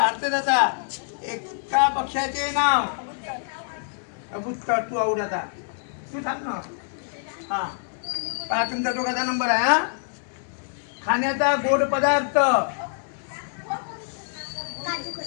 जाता. एका पक्षाचे नाव? अबुत्तर. तू आऊट आता, तू सांग ना. हा पहा, तुमचा दोघांचा नंबर आहे. हा. खाण्याचा गोड पदार्थ?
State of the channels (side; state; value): right; silent; digital silence